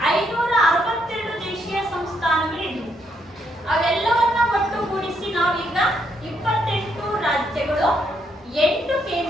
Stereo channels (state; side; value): normal; both; correlation 0.75